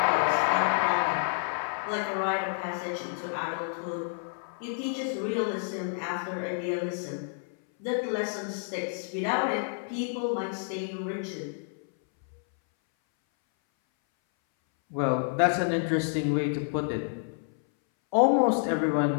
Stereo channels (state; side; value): silent; right; 59 dB below the other